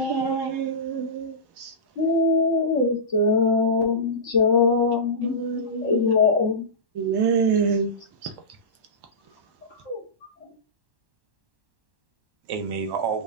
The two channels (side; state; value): left; late; 1.1 ms